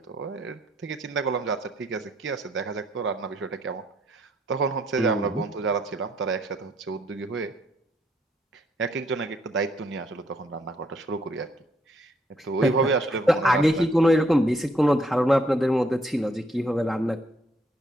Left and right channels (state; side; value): normal; both; correlation 0.70